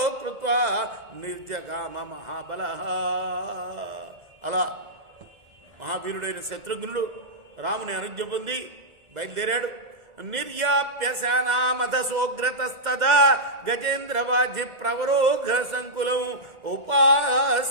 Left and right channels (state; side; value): late; left; 2.1 ms